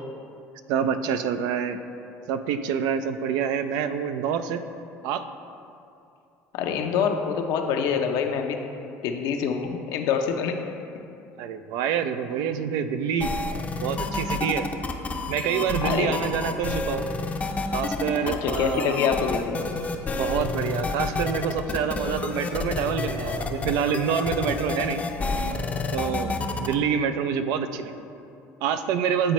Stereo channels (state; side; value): normal; both; correlation 0.29